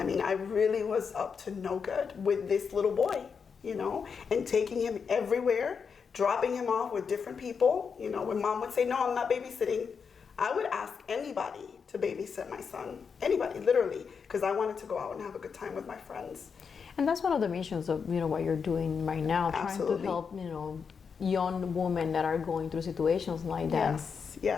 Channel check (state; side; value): quieter; right; 6.0 dB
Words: mean, I really was up to no good with this little boy, and taking him everywhere, dropping him off with different people. When mom would say, no, I'm not babysitting, I would ask anybody to babysit my son. Anybody, literally, because I wanted to go out and have a good time with my friends. And that's one of the missions of what you're doing right now, Absolutely. trying to help young women that are going through situations like that.